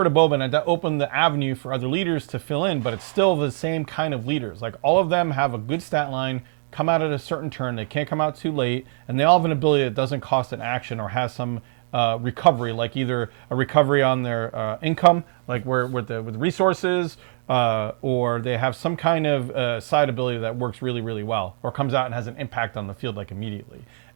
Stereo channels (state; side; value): silent; left; digital silence